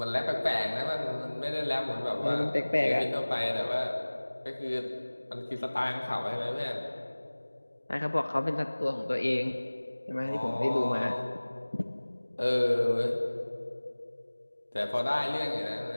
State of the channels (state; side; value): inverted; both; correlation -1.00